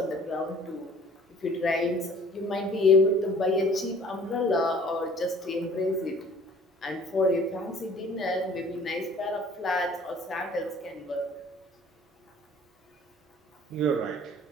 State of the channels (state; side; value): normal; both; correlation 0.51